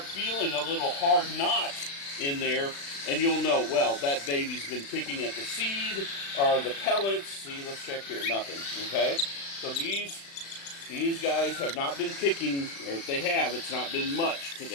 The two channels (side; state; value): right; late; 36 ms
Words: feeling a little hard knot in there, and you'll know, well, that baby's been picking at the seed or the pellets. See, let's check here, nothing, okay? So these guys have not been picking, or if they have, it's not been much